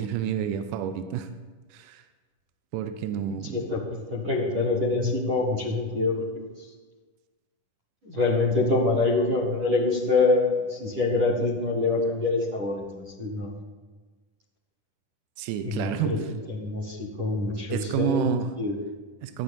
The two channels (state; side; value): late; left; 10 ms